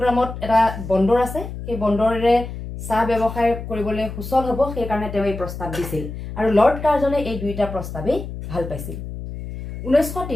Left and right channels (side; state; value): left; noise; hum, 9 dB below the sound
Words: এটা বন্দৰ আছে, সেই বন্দৰেৰে চাহ ব্যৱসায় কৰিবলৈ সুচল হ'ব সেইকাৰণে তেওঁ এই প্ৰস্তাৱ দিছিল আৰু লৰ্ড কাৰ্জনে এই দুইটা প্ৰস্তাৱেই ভাল পাইছিল